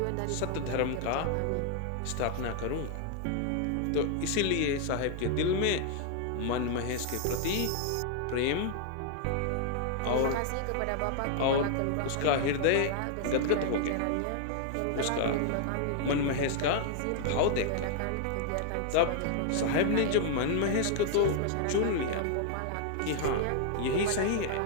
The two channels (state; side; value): different; both; correlation 0.00